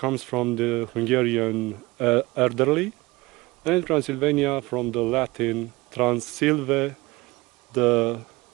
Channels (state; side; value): quieter; left; 21.8 dB